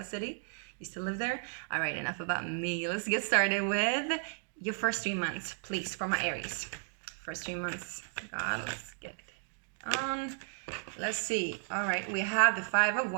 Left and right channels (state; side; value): silent; left; 55 dB below the other